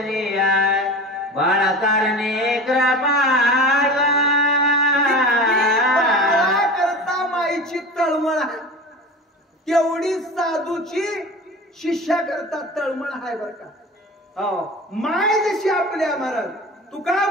बाळा कारणे कृपाळा. करता माईची तळमळ तेवढी साधूची शिष्या करता तळमळ आहे बर का. माय जशी आपल्या महाराज तुका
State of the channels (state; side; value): normal; both; correlation 0.34